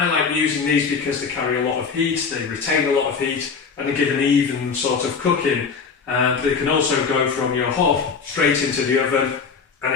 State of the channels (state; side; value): quieter; right; 5.5 dB